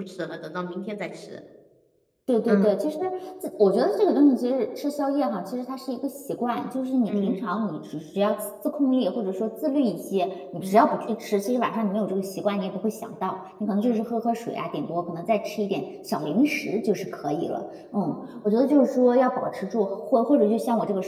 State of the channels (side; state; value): both; identical; correlation 1.00